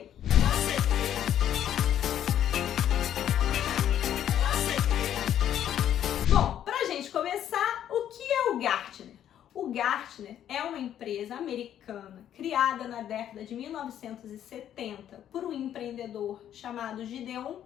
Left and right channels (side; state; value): right; quieter; 10.5 dB